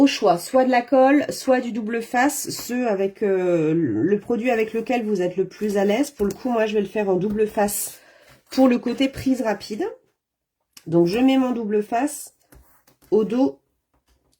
choix, soit de la colle, soit du double face, ceux avec le produit avec lequel vous êtes le plus à l'aise. Pour le coup, moi, je vais le faire en double face pour le côté prise rapide. Donc, je mets mon double face au dos,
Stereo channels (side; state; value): both; identical; correlation 1.00